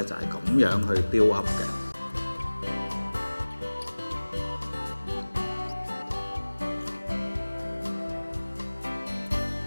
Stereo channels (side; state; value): both; inverted; correlation -1.00